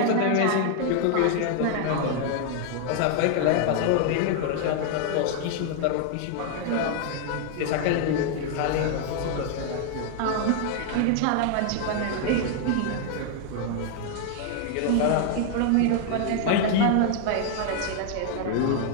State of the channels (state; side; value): different; both; correlation 0.00